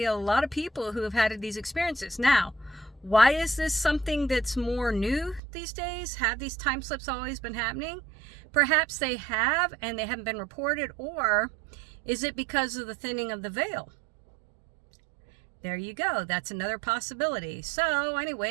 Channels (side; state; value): left; drops out; at 5.4 s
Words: a lot of people who have had these experiences. Now, why is this something that's more new these days? Have these time slips always been happening? Perhaps they have, and they haven't been reported. Or is it because of the thinning of the veil? There you go. That's another possibility. So